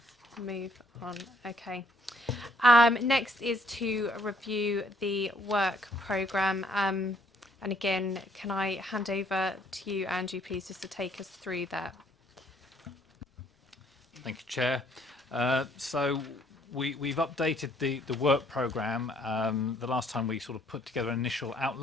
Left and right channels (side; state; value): both; normal; correlation 0.66